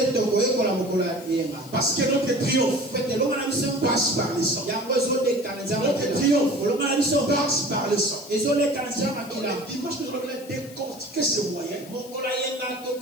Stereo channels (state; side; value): noise; left; hiss, 19 dB below the sound